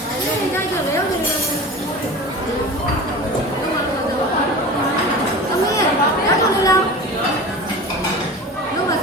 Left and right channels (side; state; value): both; normal; correlation 0.34